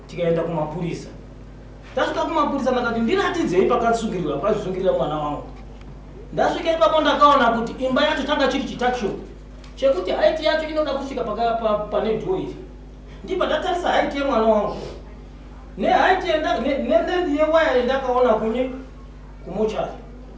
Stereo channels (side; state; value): both; identical; correlation 1.00